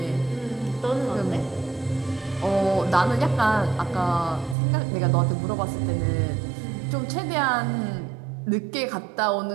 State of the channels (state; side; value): drops out; left; at 4.5 s